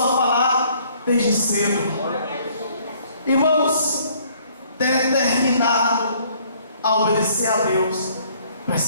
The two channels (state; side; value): inverted; both; correlation -0.61